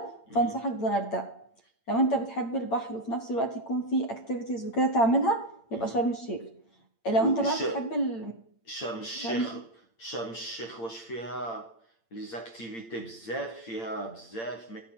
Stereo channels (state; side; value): late; right; 8.8 ms